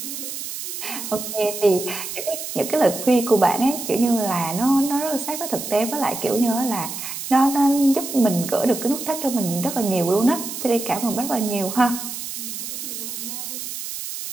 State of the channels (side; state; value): right; noise; hiss, 7 dB below the sound